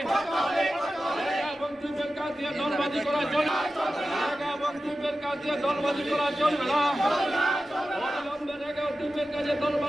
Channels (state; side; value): normal; both; correlation 0.94